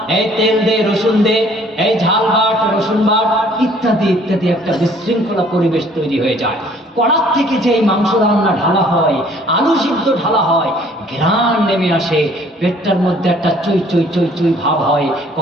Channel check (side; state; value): both; normal; correlation 0.57